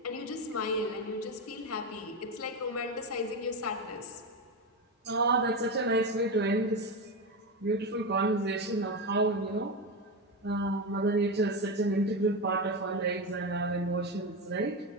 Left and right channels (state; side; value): normal; both; correlation 0.15